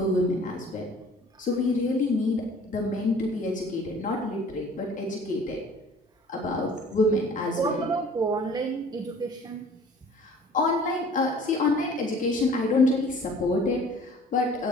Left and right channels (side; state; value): both; normal; correlation 0.49